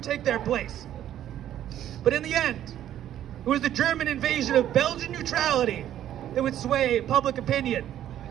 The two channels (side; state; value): left; quieter; 11.5 dB